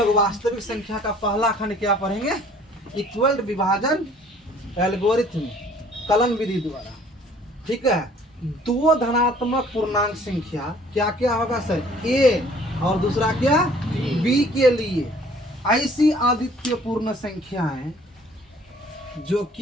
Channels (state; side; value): normal; both; correlation 0.55